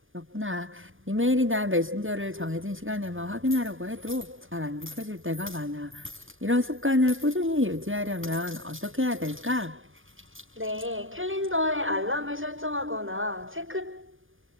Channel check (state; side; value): late; left; 0.59 ms